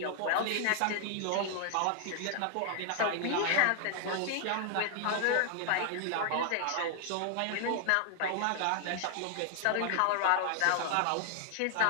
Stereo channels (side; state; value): both; different; correlation 0.00